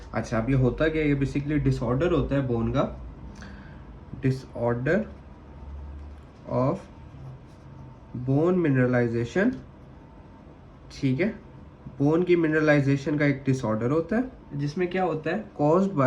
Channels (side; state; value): both; identical; correlation 1.00